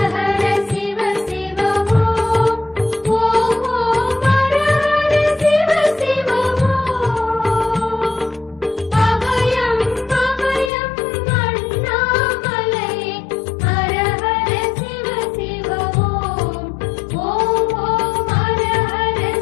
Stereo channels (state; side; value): drops out; right; at 10.7 s